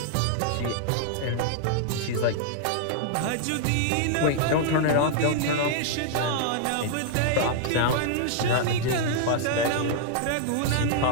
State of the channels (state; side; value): different; both; correlation -0.01